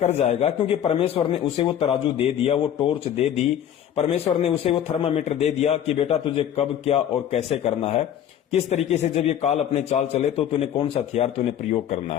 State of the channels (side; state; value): right; quieter; 10.1 dB